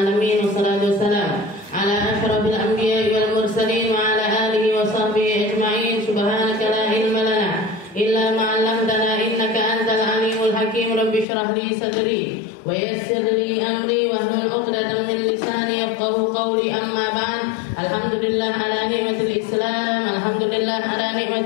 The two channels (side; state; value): right; drops out; at 11.2 s